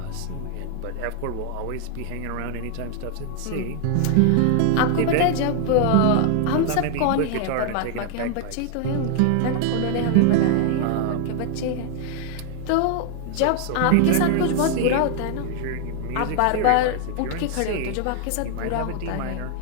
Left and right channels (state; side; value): different; both; correlation 0.00